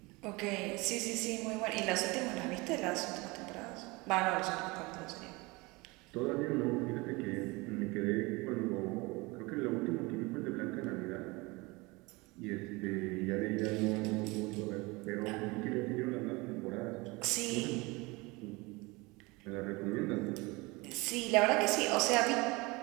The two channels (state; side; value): quieter; left; 24.6 dB